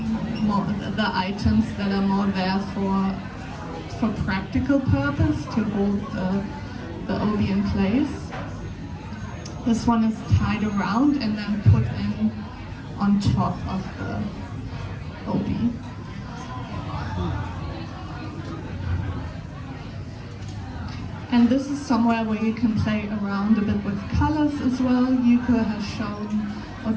more the items that are more there for practical purpose, to hold the obi in place. This one is tied around and then put in on top of the obi. And this is somewhere where you can play around a bit with colors as well. Yuko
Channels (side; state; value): both; identical; correlation 1.00